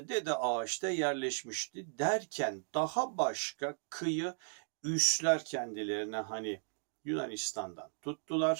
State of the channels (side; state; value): left; silent; digital silence